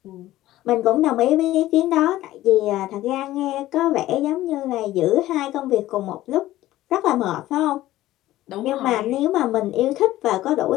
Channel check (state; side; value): quieter; right; 15.4 dB